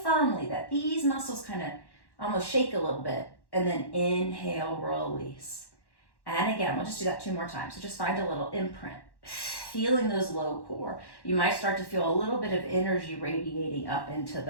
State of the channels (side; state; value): right; late; 1.1 ms